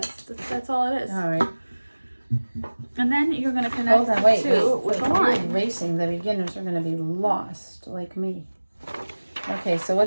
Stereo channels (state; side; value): inverted; both; correlation -1.00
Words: all it is. All right. And then you're going to connect Hold on, wait. with the line. You're racing. The beginners are going to be lost, like me. Okay, so